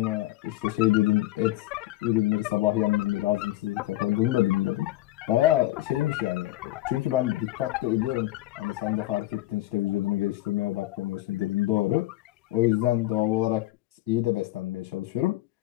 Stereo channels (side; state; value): right; quieter; 16.3 dB